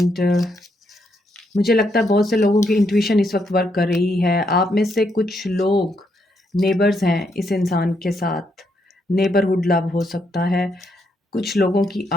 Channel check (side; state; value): both; normal; correlation 0.77